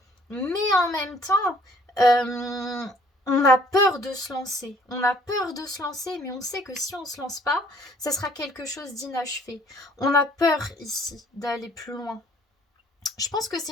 Mais en même temps, on a peur de se lancer. On a peur de se lancer, mais on sait que si on ne se lance pas, ça sera quelque chose d'inachevé. On a peur ici d'aller plus loin. Je pense que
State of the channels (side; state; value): both; normal; correlation 0.58